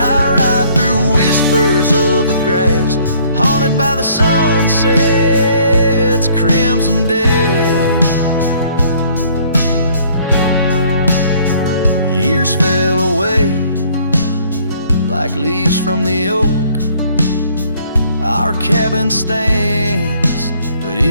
I ride through whispers of the grass, haunted by the sunset's crimson death. Years fell away like leaves from the oak. Our cabin stands, but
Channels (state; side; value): inverted; both; correlation -0.60